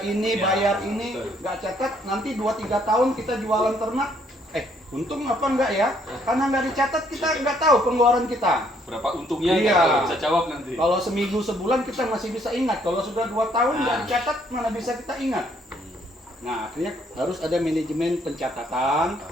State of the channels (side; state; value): both; normal; correlation 0.67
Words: ini, Ya, bayar ini, betul. nggak catat, nanti 2-3 tahun kita jualan ternak. Untung apa enggak ya? Karena nggak dicatat, kita nggak tahu pengeluaran kita. Berapa untungnya? Iya. Nggak bisa jawab nanti. Kalau seminggu sebulan kita masih bisa ingat. Kalau sudah 2 tahun nggak dicatat, mana bisa kita ingat? Nah, akhirnya harus ada manajemen pencatatan,